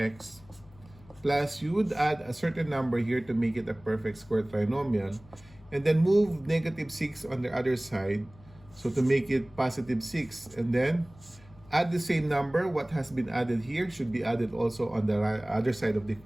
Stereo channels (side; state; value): left; noise; hum, 24 dB below the sound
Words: plus, you would add a certain number here to make it a perfect square trinomial. And then move negative 6 on the other side. So to make it positive 6. And then add the same number. What has been added here should be added also on the other side of the